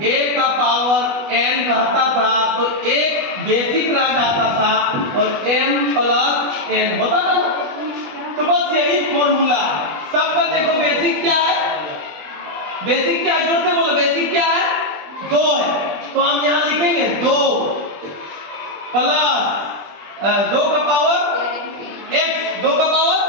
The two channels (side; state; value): left; late; 20 ms